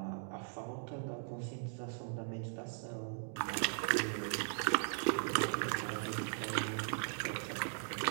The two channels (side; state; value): left; silent; digital silence